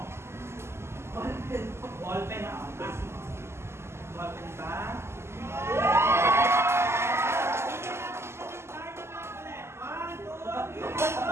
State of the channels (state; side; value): late; left; 0.12 ms